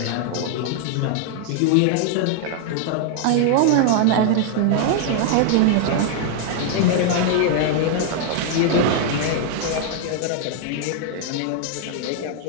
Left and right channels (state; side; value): different; both; correlation 0.00